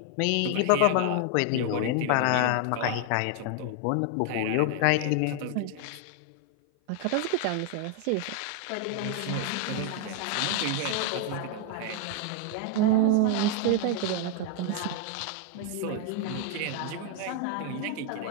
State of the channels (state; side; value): different; both; correlation 0.00